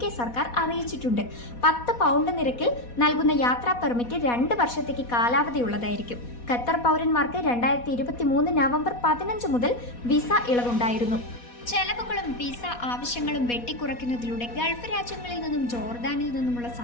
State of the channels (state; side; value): late; right; 4.2 ms